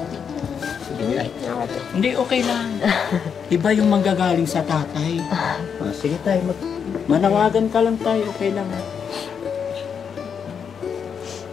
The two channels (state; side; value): quieter; right; 7.0 dB